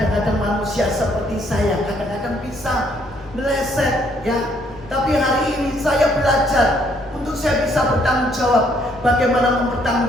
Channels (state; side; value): normal; both; correlation 0.68